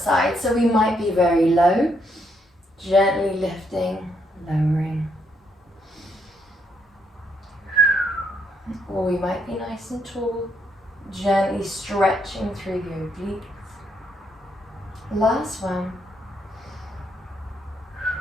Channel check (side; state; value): both; normal; correlation 0.75